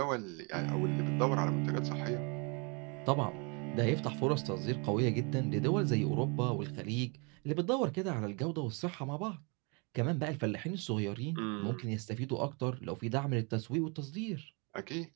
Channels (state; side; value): quieter; left; 32.7 dB